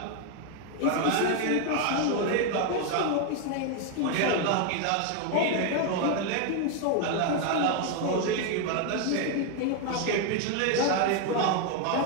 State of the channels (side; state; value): both; different; correlation 0.01